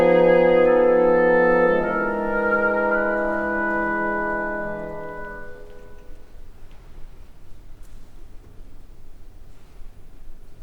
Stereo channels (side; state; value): both; identical; correlation 1.00